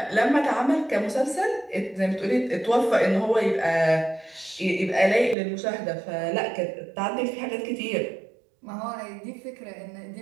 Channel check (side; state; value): left; drops out; at 5.4 s